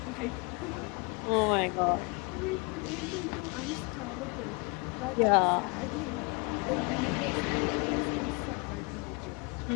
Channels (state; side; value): quieter; right; 30.4 dB